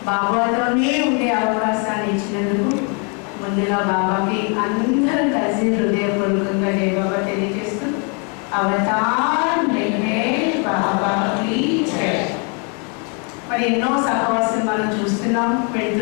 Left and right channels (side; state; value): right; quieter; 36.2 dB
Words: బాబాతోనే ఉండే అవకాశాన్ని ఇచ్చినందుకు ముందుగా బాబాకి అందరం కలిసి హృదయపూర్వకంగా జై బాబా తెలియజేస్తూ అవతార్ మెహర్ బాబా की जय. మరి ఎన్నో సహవాసం మనం చూస్తున్నాం,